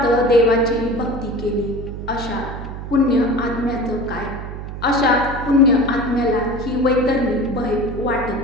देवाची भक्ती केली, अशा पुण्य आत्म्याचं काय? अशा पुण्य आत्म्याला ही वैतरणी भय वाटत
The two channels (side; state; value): right; noise; hum, 9 dB below the sound